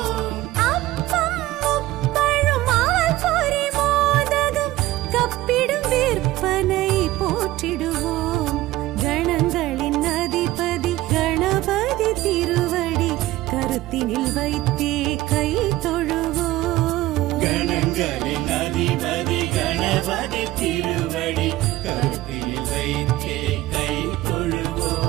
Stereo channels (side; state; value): left; quieter; 16.8 dB